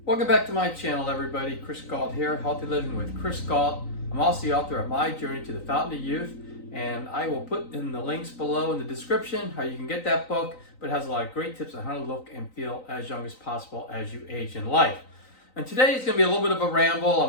Welcome back to my channel, everybody. Chris Gault here, Healthy Living with Chris Gault. I'm also the author of My Journey to the Fountain of Youth, and I will put in the links below in the description how you can get that book, but it has a lot of great tips on how to look and feel as young as possible as you age in life. And today is going to be a little bit of a ramble.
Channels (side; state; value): right; late; 3.9 ms